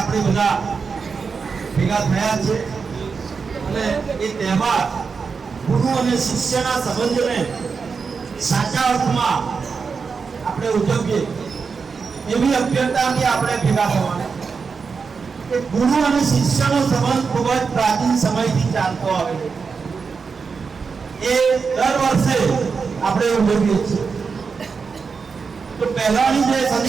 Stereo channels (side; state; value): left; quieter; 5.3 dB